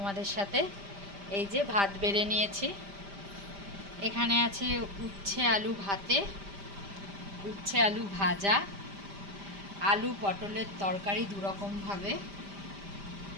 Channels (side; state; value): left; late; 5.0 ms